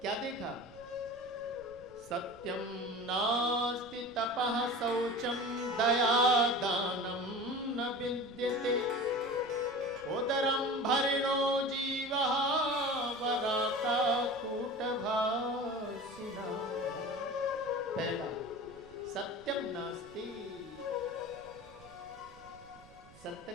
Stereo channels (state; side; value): noise; right; rumble, 23 dB below the sound